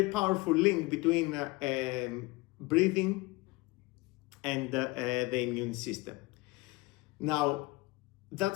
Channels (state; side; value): quieter; right; 23.0 dB